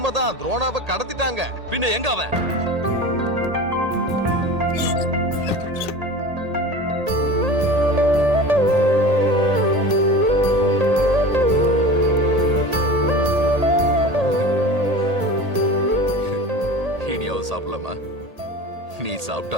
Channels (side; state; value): left; late; 1.8 ms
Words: துரோணாவை கடத்திட்டாங்க. பின்ன எங்க அவன்? இனியாவது சாப்பிடலாமா? நீ